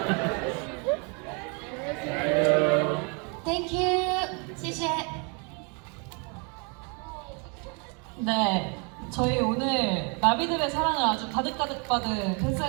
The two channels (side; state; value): left; quieter; 34.5 dB